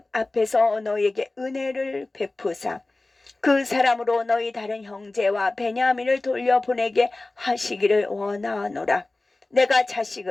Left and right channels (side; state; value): right; quieter; 3.0 dB